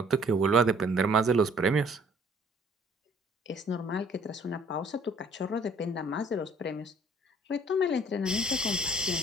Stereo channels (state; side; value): normal; both; correlation 0.57